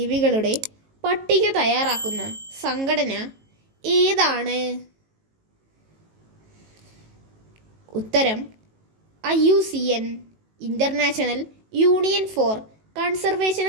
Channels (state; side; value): late; left; 18 ms